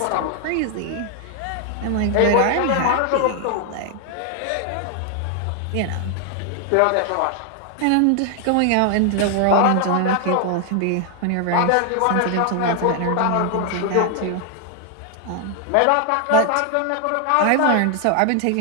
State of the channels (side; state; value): both; different; correlation 0.00